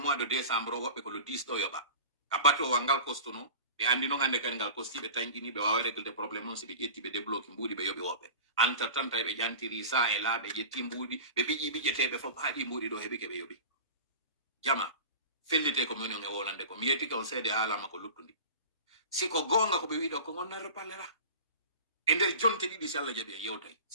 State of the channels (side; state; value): both; inverted; correlation -0.36